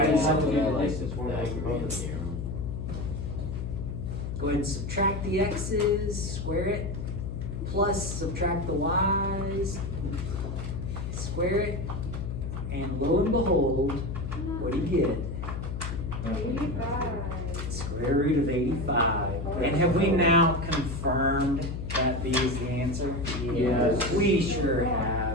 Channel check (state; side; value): noise; left; hum, 5 dB below the sound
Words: We'll so have to do I the like distance the formula for both Pythagorean of them. theorem. Go ahead and subtract the x's, square it, plus subtract the y's, square it, and lo and behold, what do you get? 85. Square root of 85. And have we now confirmed that B is the answer? Yes. We sure